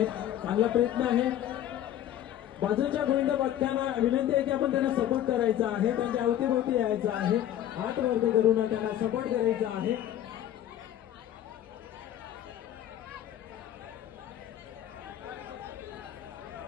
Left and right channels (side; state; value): right; quieter; 11.7 dB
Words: चांगला प्रयत्न आहे. बाजूच्या गोविंद पथकांना विनंती आहे की आपण त्यांना सपोर्ट करायचा आहे. त्यांच्या अवतीभोवती यायचं आहे. हात वरती करून त्यांना सपोर्ट करायचा आहे.